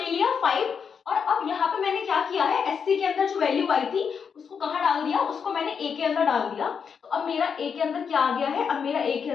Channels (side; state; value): right; quieter; 6.5 dB